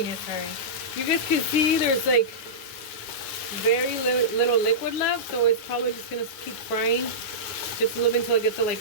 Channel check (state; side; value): late; right; 9.6 ms